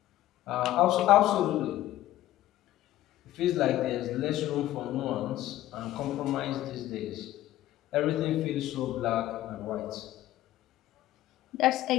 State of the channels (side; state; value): right; quieter; 14.4 dB